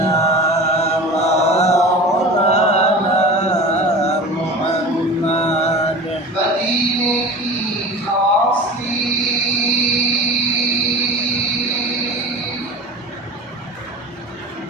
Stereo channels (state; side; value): normal; both; correlation 0.36